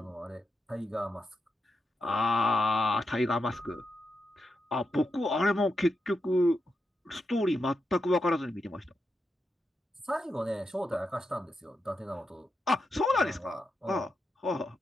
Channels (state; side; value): normal; both; correlation 0.86